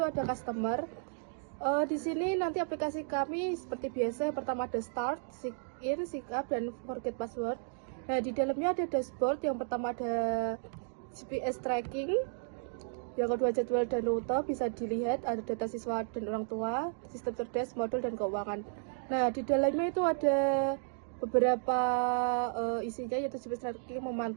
customer. Di sini nanti aplikasi kami seperti biasa, yang pertama ada start, sign in, sign up, dan forget password. Nah, di dalamnya ada dashboard. Yang pertama ada GPS tracking, yang kedua jadwal dan rute bisa dilihat, ada data siswa dan orang tua, sistem cerdas, modul, dan keuangan. Nah, di dalamnya itu ada beberapa isinya, yaitu GPS tracking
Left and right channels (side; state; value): left; silent; digital silence